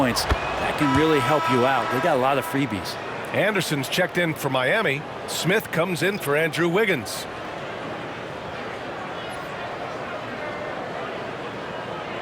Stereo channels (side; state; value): both; identical; correlation 1.00